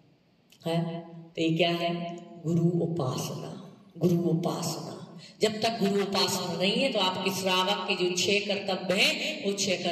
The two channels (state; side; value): identical; both; correlation 1.00